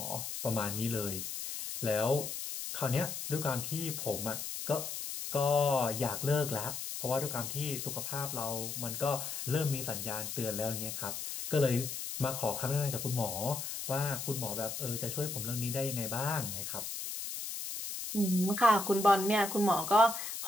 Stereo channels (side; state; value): left; noise; hiss, 5 dB below the sound